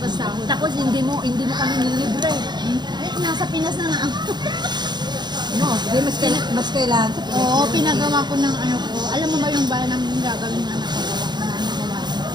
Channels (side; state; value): left; late; 0.21 ms